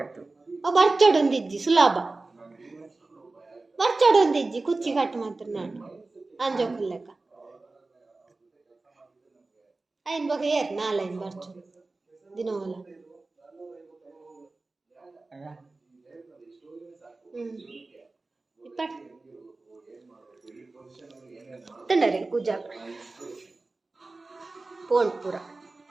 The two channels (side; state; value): left; quieter; 3.4 dB